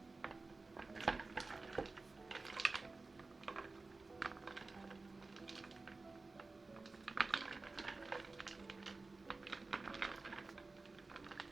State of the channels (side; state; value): left; quieter; 3.6 dB